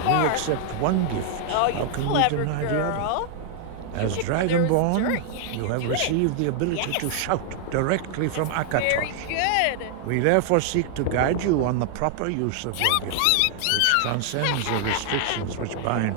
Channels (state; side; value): different; both; correlation 0.00